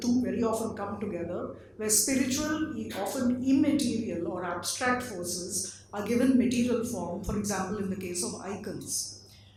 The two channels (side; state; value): both; identical; correlation 1.00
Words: very often come together, where spiritual, often immaterial or abstract forces are given material form, for example, in the case of icons.